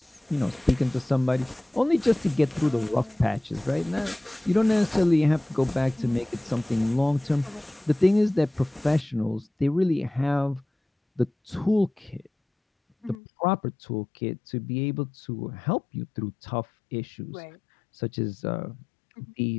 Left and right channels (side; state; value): right; drops out; at 13.2 s